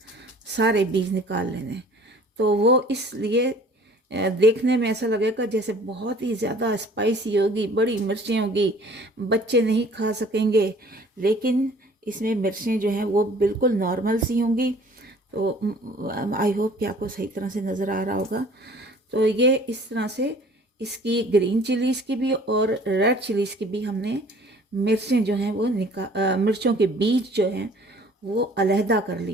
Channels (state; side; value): normal; both; correlation 0.51